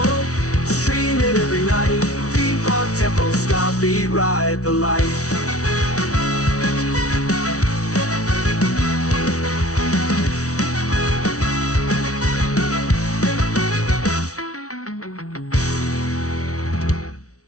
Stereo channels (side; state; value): right; late; 0.66 ms